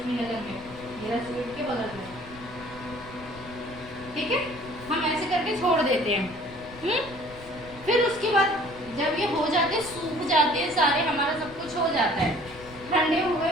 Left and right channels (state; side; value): noise; left; rumble, 18 dB below the sound